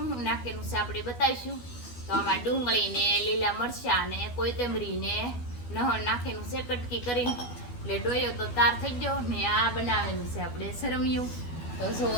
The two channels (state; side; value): late; right; 12 ms